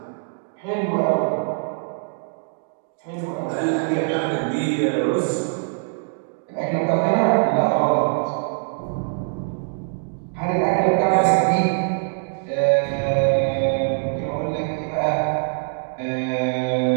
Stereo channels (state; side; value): silent; left; 56 dB below the other